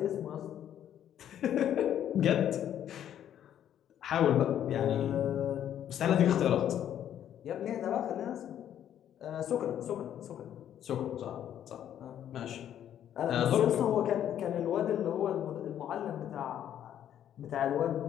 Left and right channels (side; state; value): right; quieter; 10.4 dB